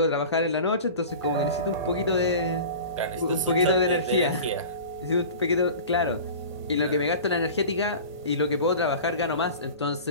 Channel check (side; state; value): both; inverted; correlation -0.37